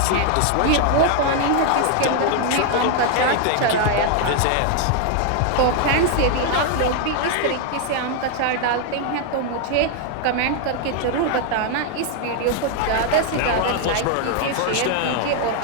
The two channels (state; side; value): different; both; correlation 0.00